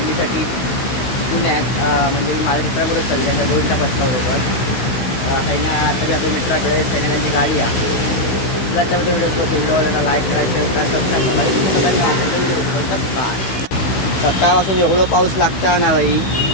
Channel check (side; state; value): right; late; 16 ms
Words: पुण्यात, म्हणजे मी माझ्या मित्राबरोबर चालले त्या गोविंदा पथकाबरोबर काही ना। तरी आपल्या मित्राकडे सैन्याची गाडी आहे। तुला त्यामध्ये व्हिडिओला लाईक करायचं तर सबस्क्राईब करा। सकाळपासून एवढं पाऊस लागता ना बाई,